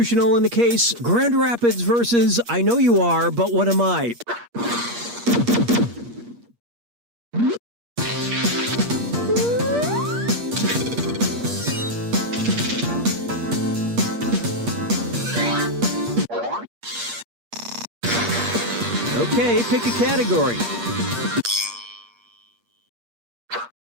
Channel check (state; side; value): late; left; 8.5 ms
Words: in the case Grand Rapids versus I Know You Are, But What Am I? Okay, pick a category.